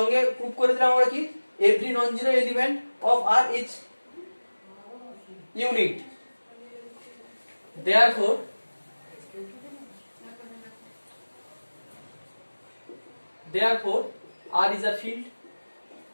প্রুভ করে দিলাম আমরা কি every non zero element of R is unit. therefore R is a field.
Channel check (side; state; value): both; inverted; correlation -1.00